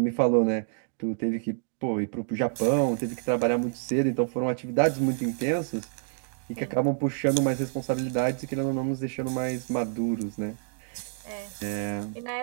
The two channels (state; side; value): silent; left; digital silence